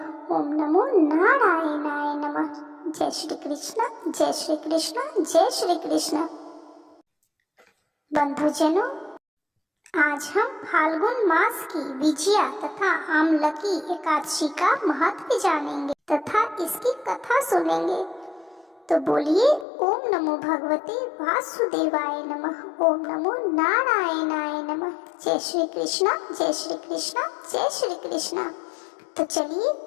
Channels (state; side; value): drops out; right; at 19.7 s